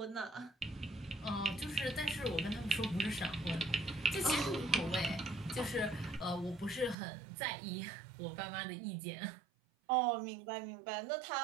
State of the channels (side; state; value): left; drops out; at 7.0 s